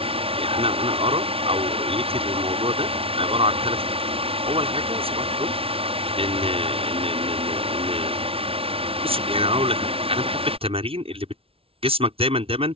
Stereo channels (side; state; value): left; late; 0.27 ms